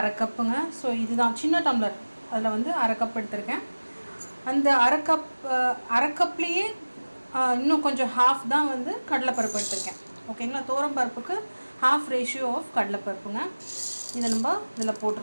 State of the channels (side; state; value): both; inverted; correlation -1.00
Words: கப்புங்க. ஸோ இதுதான் சின்ன டம்ளர், அதில் வந்து அரை கப் எடுத்திருக்கேன். அந்த அரை கப்லேயே இன்னும் கொஞ்சம் ஹாஃப் தான் வந்து கடலைப்பருப்பு எடுத்திருக்கேன். ஓகேங்களா, தோரம் பருப்புக்கு ஹாஃப் ரேஷியோ ஆஃப் கடலைப்பருப்புங்க. இதை நம்ம இதில்